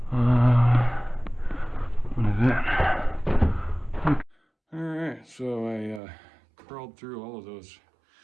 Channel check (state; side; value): drops out; left; at 6.0 s